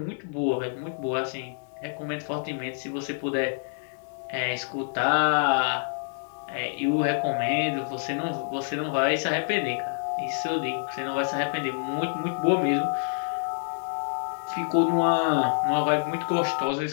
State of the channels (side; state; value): right; silent; digital silence